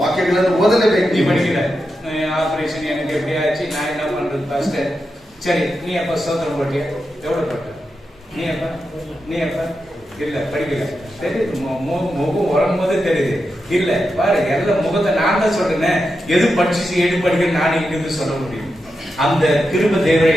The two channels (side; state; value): both; normal; correlation 0.88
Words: ವಾಕ್ಯಗಳನ್ನು ಓದಲೇಬೇಕು. நீ படிக்கிற ஆபரேஷன் எனக்கு எப்படி ஆச்சு, நான் என்ன பண்றது ஃபர்ஸ்ட். சரி, நீ எப்ப சோதனை போட்டியா? எவ்வளவு போட்ட? நீ எப்ப இல்ல படிக்கல தெரியுது, முகம் வரும்போது தெரியுது. இல்ல பாரு, எல்லாம் முகத்தை நான் தான் சொல்றேன். எது படிச்சு எது படிக்க நான் இங்கிருந்து சொல்ல முடியும். அந்த கிருபை தேவரை